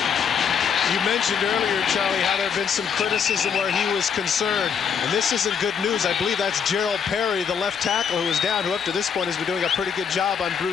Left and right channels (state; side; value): quieter; right; 7.0 dB